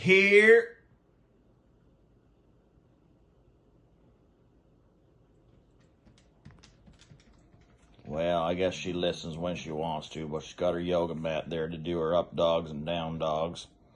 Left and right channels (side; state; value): both; identical; correlation 1.00